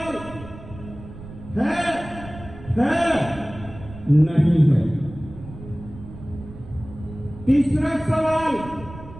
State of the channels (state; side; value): noise; right; rumble, 15 dB below the sound